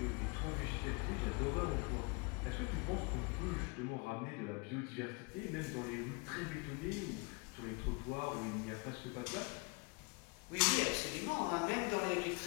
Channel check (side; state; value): right; quieter; 30.3 dB